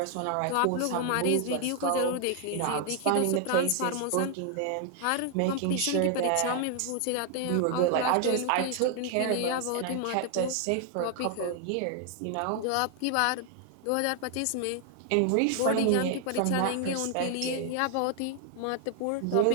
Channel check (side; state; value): both; different; correlation 0.00